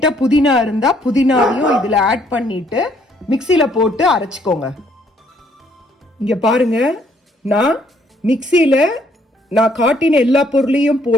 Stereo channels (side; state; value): both; normal; correlation 0.66